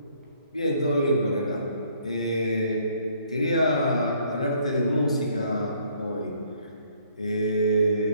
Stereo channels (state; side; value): inverted; both; correlation -0.64